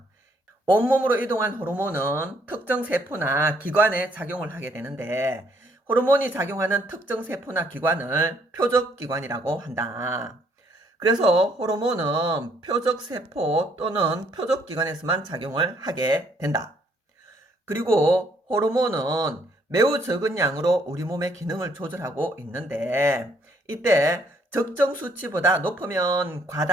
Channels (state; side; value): normal; both; correlation 0.68